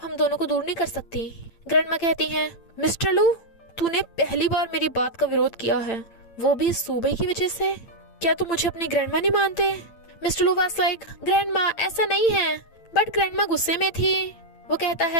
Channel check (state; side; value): late; right; 8.8 ms